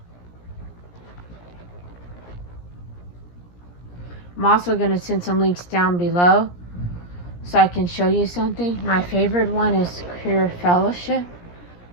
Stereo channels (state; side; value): late; right; 17 ms